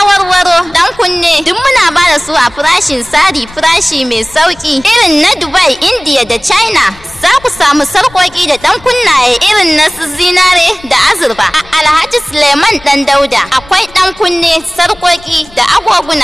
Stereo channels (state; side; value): noise; left; rumble, 23 dB below the sound